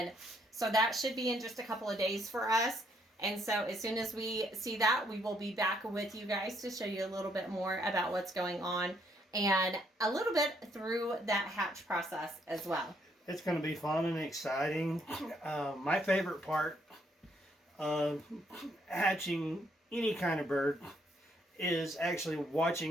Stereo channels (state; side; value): normal; both; correlation 0.71